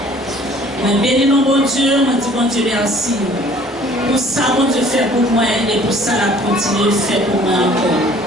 Mais bénis mon bon Dieu, moi dis bon Dieu merci. Pour ça, bon Dieu fait pour moi et pour ça, la continue de faire pour moi encore.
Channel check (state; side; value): normal; both; correlation 0.53